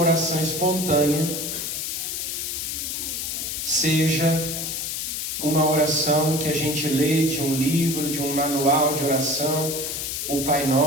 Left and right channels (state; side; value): noise; left; hiss, 3 dB below the sound